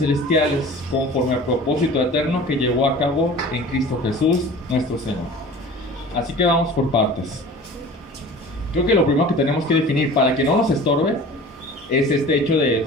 conforme al propósito eterno que llevó a cabo en Cristo Jesús, nuestro Señor. Así que vamos por partes. Creo que lo primero que tenemos que definir para que no nos estorbe es este hecho de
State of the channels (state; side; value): normal; both; correlation 0.41